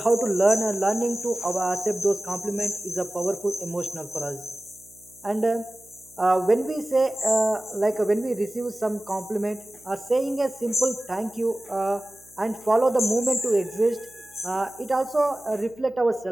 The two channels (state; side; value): noise; right; hum, 28 dB below the sound